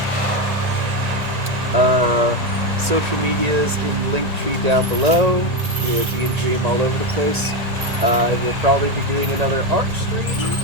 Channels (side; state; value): left; late; 1.9 ms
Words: Social medias in Linktree down below. DnDream all over the place. We'll probably be doing another art stream